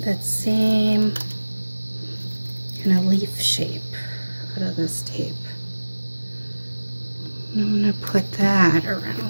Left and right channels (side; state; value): both; inverted; correlation -1.00